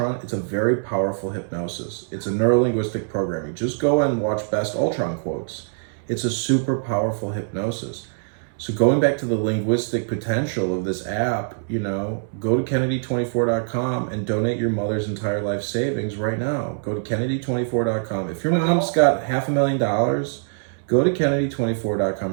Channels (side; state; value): left; silent; digital silence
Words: it's a very powerful hypnosis. It's a neurolinguistic programming. Just go and watch Best Ultron Quotes. It's a super powerful hypnosis. So going back to the linguistic potential of this app, go to Kennedy24.com and donate your mother's entire life savings right now. Go to Kennedy24.com. If your mom's got $500,000, go to Kennedy24.com